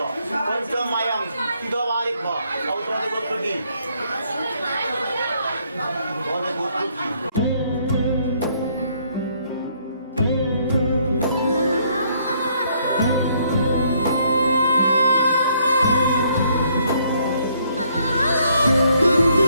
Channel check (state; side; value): inverted; both; correlation -0.68